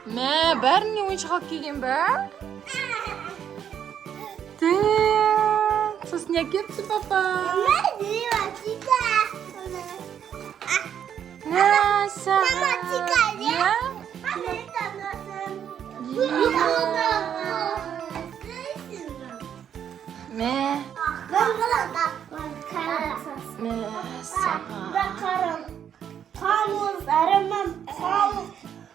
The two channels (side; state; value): left; quieter; 8.9 dB